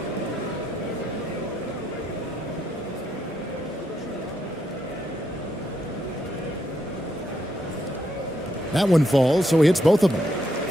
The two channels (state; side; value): normal; both; correlation 0.78